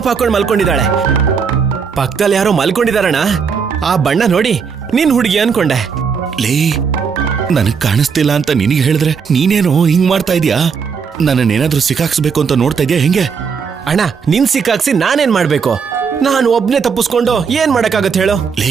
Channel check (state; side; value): quieter; left; 6.1 dB